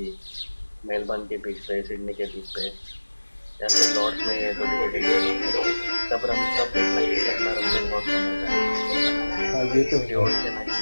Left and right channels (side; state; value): both; inverted; correlation -1.00